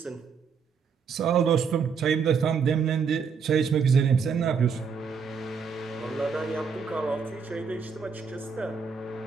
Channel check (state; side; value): quieter; left; 5.9 dB